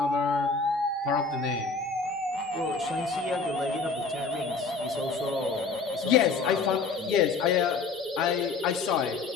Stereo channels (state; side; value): quieter; right; 4.3 dB